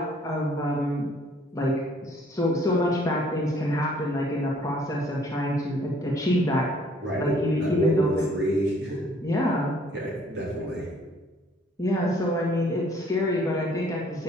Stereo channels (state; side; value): normal; both; correlation 0.60